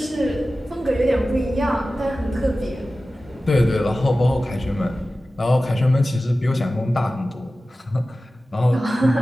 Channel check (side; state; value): both; normal; correlation 0.95